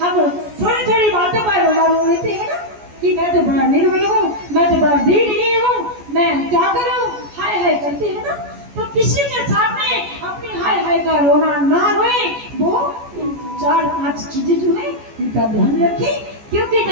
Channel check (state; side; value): late; left; 14 ms